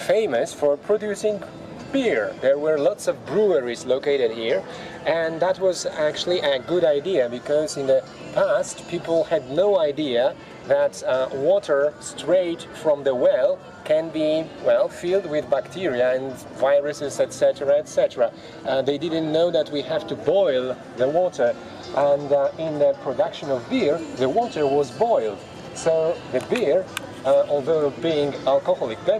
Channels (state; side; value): identical; both; correlation 1.00